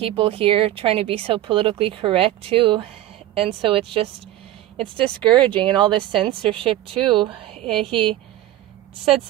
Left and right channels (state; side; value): quieter; left; 14.1 dB